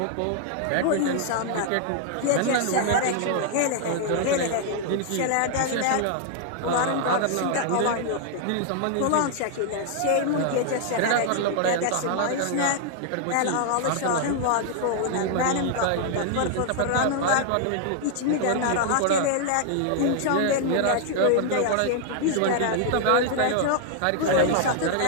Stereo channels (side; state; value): both; different; correlation 0.00